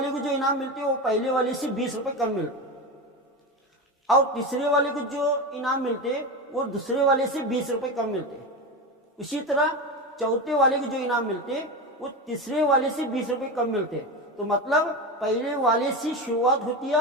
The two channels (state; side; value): normal; both; correlation 0.20